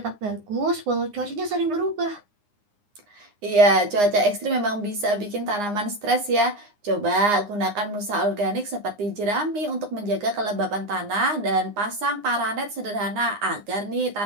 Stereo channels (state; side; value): late; left; 9.7 ms